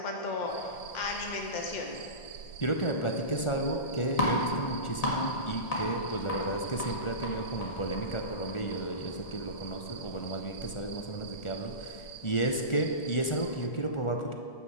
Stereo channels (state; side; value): late; right; 1.4 ms